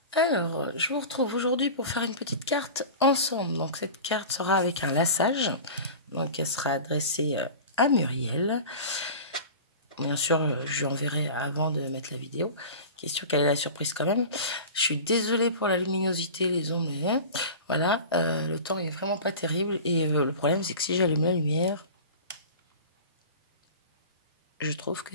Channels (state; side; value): inverted; both; correlation -0.35